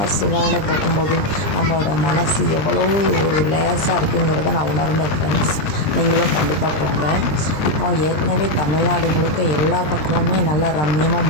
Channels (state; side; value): late; right; 20 ms